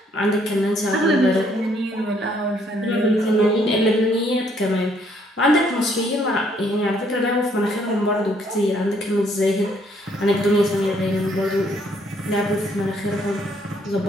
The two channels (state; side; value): normal; both; correlation 0.67